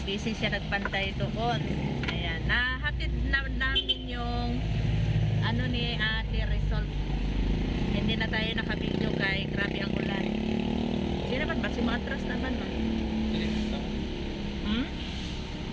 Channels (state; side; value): identical; both; correlation 1.00